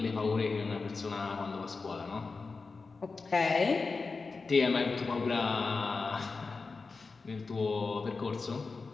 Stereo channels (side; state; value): right; quieter; 4.3 dB